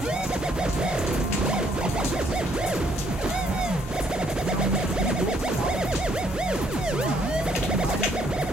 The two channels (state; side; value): normal; both; correlation 0.68